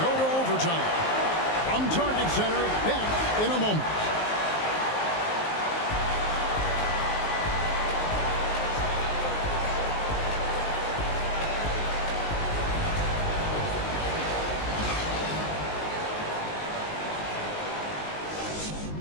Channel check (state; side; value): late; right; 19 ms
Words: to overtime. From Target Center, back in a moment.